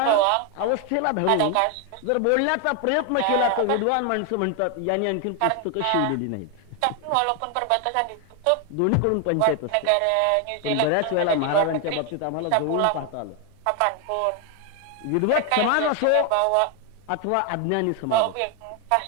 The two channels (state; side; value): different; both; correlation 0.01